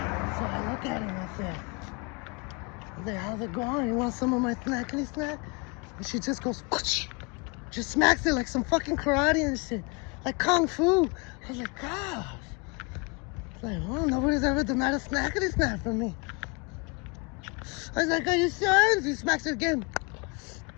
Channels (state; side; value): quieter; right; 30.5 dB